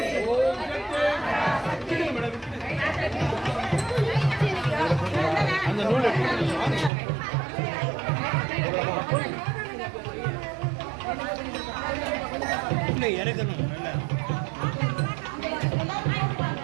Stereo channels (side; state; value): left; drops out; at 6.9 s